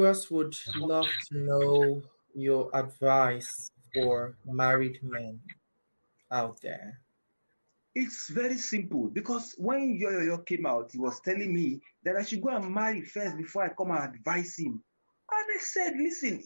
would love to know your advice for married men out there. It's very simple, because when Yoyo came out, he was telling me that I should go and marry first before I come and advise him. And I said, listen,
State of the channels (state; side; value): inverted; both; correlation -1.00